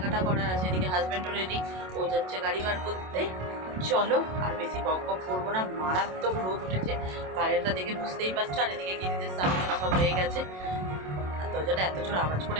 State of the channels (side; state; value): left; late; 27 ms